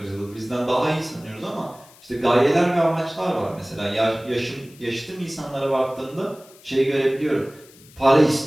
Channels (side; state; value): left; noise; hiss, 25 dB below the sound